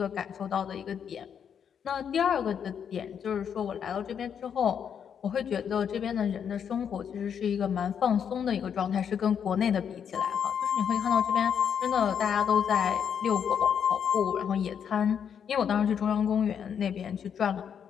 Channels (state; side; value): quieter; right; 7.9 dB